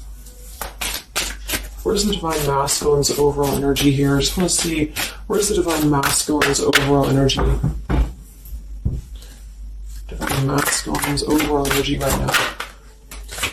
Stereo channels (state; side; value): identical; both; correlation 1.00